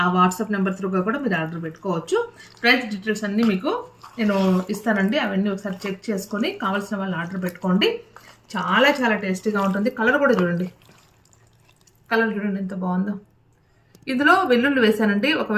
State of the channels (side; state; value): both; identical; correlation 1.00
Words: ఆ వాట్సాప్ నెంబర్ త్రూగా కూడా మీరు ఆర్డర్ పెట్టుకోవచ్చు. ప్రైస్ డీటెయిల్స్ అన్నీ మీకు నేను ఇస్తానండి. అవన్నీ ఒకసారి చెక్ చేసుకొని కావాల్సిన వాళ్ళు ఆర్డర్ పెట్టుకోండి. చాలా చాలా టేస్టీగా ఉంటుంది. కలర్ కూడా చూడండి, కలర్ చూడండి ఎంత బాగుందో. ఇందులో వెల్లుల్లి వేసానండి.